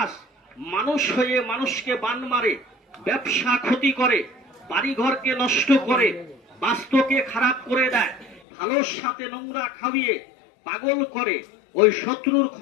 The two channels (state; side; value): drops out; right; at 8.4 s